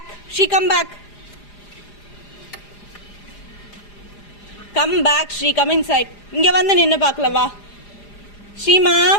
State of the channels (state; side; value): late; right; 4.9 ms